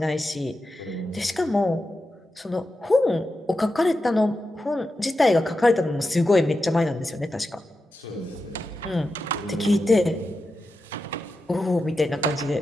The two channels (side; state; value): both; normal; correlation 0.90